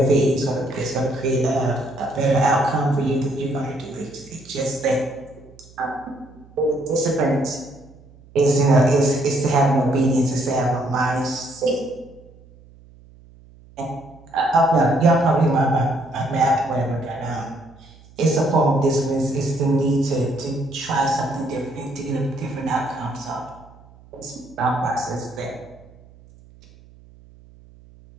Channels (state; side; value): noise; right; hum, 24 dB below the sound